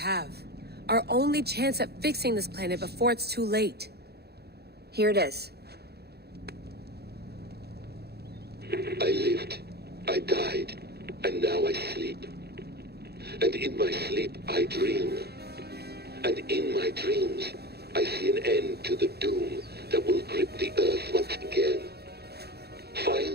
Our only chance at fixing this planet before it's too late. Here it is. I lived, I died, and now I sleep. And in my sleep I dream. And in my dreams, I see an end to the doom that will grip the Earth once again.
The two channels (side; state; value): left; late; 0.47 ms